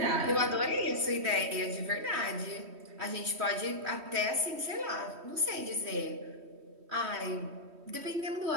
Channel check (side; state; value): left; late; 3.1 ms